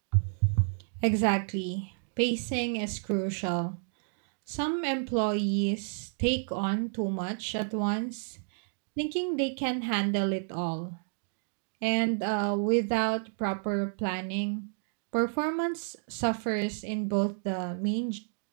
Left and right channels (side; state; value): left; silent; digital silence